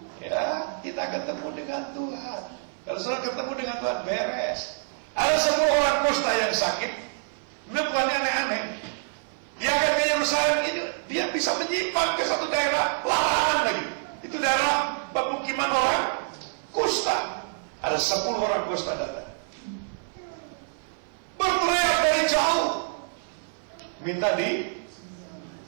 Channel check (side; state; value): left; silent; 57 dB below the other